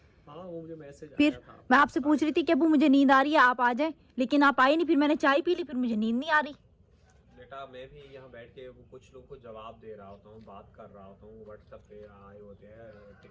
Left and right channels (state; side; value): identical; both; correlation 1.00